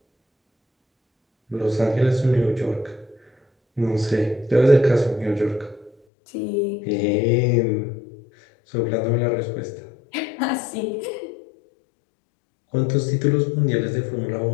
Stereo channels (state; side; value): drops out; right; at 6.0 s